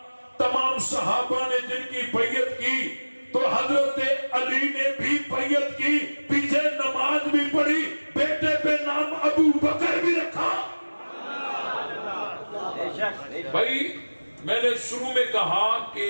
تمام صحابہ نے جن کی بیعت کی، تو حضرت علی نے بھی بیعت کی، پیچھے نماز بھی پڑھی، بیٹے پہ نام ابو بکر بھی رکھا۔ بھائی میں نے شروع میں کہا کہ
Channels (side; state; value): both; inverted; correlation -1.00